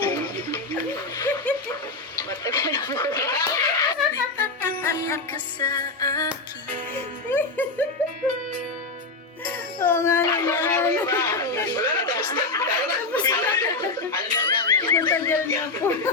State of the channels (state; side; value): quieter; right; 3.5 dB